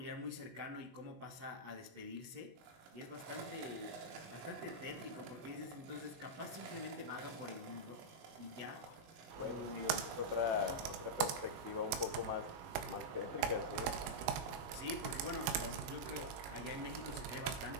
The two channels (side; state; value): left; late; 18 ms